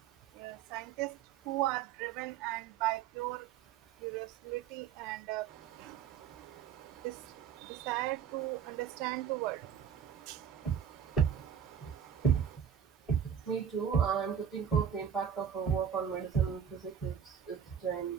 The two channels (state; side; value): quieter; left; 8.1 dB